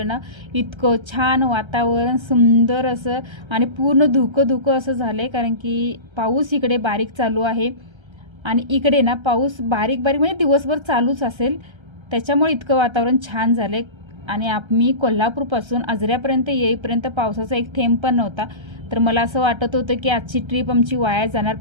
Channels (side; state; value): left; late; 1.3 ms